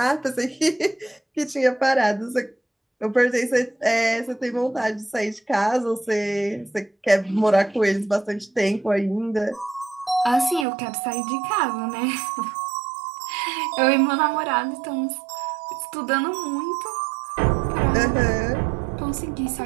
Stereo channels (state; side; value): drops out; left; at 10.7 s